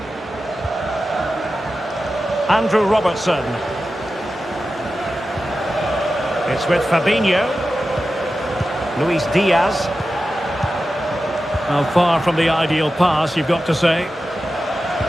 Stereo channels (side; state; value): both; normal; correlation 0.92